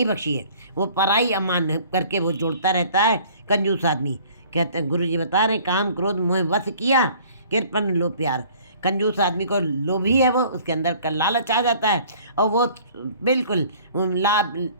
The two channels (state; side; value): inverted; both; correlation -0.52